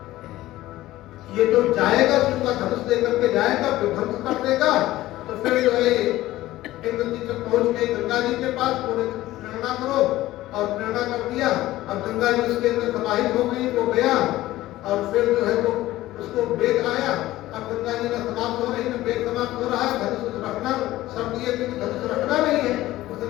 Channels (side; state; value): right; quieter; 16.1 dB